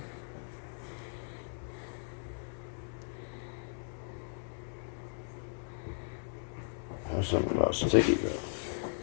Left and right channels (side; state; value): right; silent; digital silence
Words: There's something about sticky though.